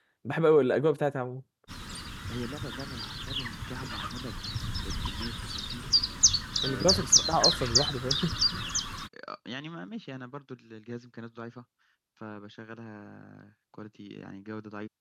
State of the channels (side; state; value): both; identical; correlation 1.00